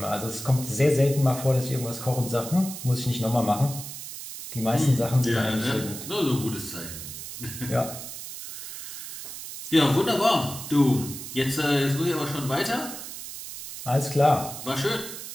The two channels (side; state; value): right; noise; hiss, 10 dB below the sound